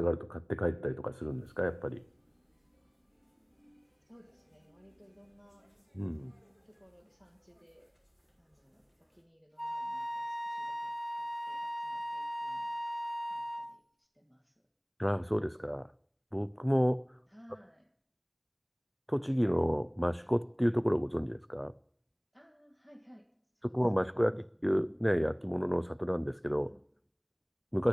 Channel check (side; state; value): both; identical; correlation 1.00